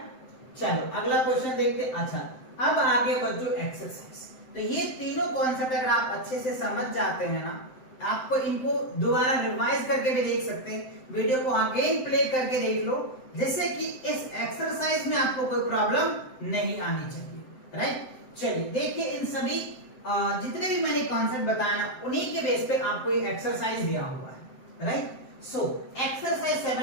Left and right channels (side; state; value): right; late; 7.8 ms